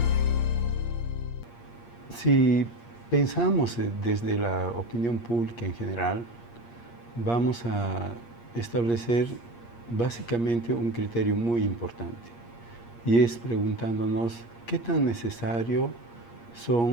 Si pensamos desde la opinión pública en general, vamos a establecer básicamente un criterio muy importante, y es preguntándonos qué tan necesario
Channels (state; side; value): late; right; 8.5 ms